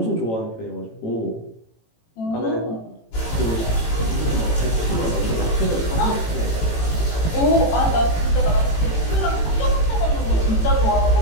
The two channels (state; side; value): late; right; 18 ms